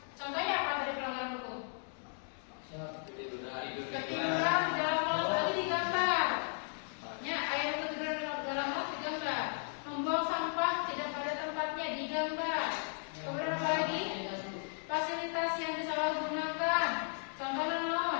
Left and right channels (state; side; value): silent; right; 54 dB below the other